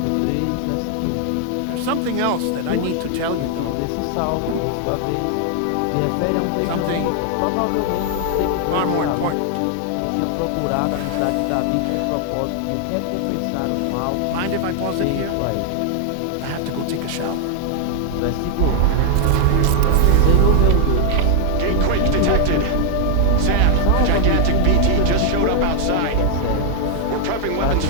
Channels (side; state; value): both; different; correlation 0.00